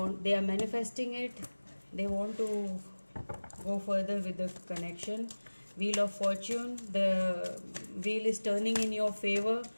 are manifesting it. They want to go further with the connection. Wheel of Fortune, the wheel is turning in your favor.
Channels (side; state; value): both; inverted; correlation -1.00